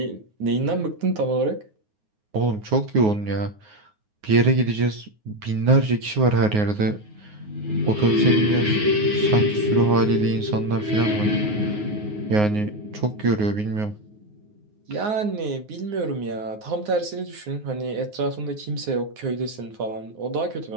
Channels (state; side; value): late; left; 9.5 ms